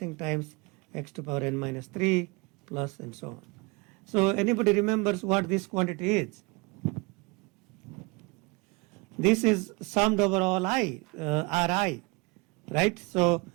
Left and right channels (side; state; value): left; quieter; 27.5 dB